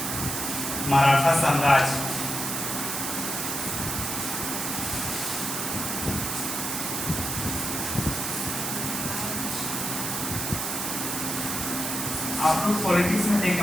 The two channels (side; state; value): right; noise; hiss, 2 dB below the sound